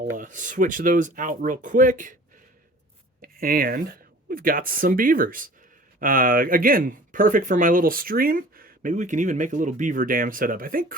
switch those out real quick. And we've got some beavers. Again, perfect for my little stream. Maybe we can even make a little beaver dam setup. I think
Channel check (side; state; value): both; normal; correlation 0.46